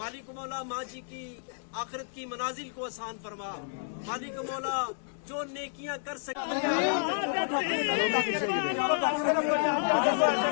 مالک مولا ماں جی کی آخرت کی منازل کو آسان فرما. مالک مولا جو نیکیاں کر سکے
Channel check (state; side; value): silent; right; digital silence